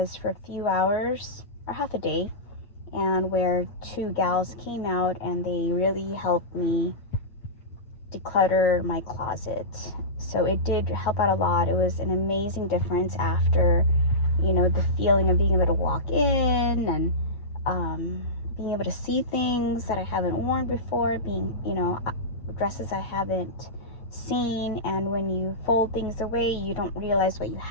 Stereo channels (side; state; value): right; late; 8.5 ms